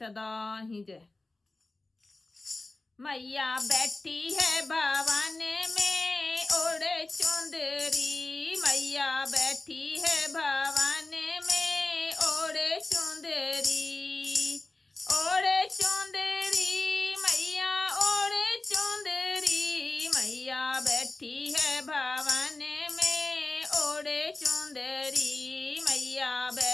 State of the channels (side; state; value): right; quieter; 3.1 dB